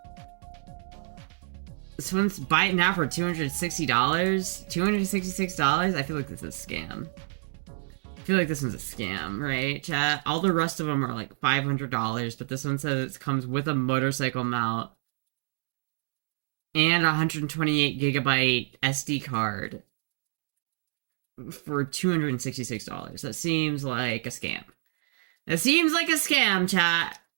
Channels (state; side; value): silent; left; 59 dB below the other